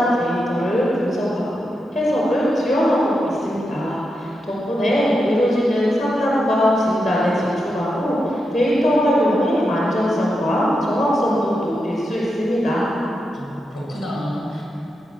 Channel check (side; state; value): both; normal; correlation 0.86